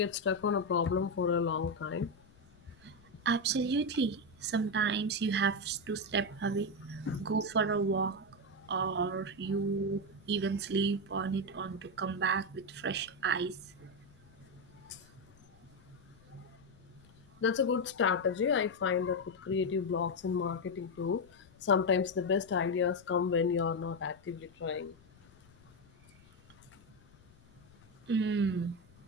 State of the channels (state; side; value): noise; left; rumble, 26 dB below the sound